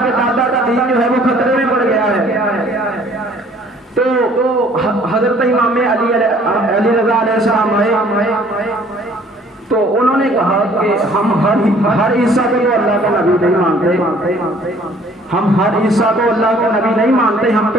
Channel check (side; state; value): both; normal; correlation 0.57